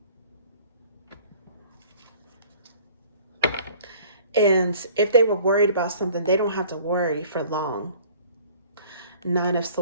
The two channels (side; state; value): both; inverted; correlation -0.51